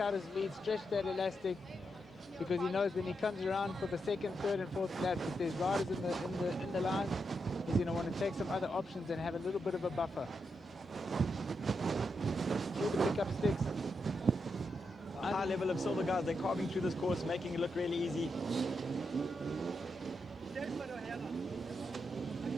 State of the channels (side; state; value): both; normal; correlation 0.84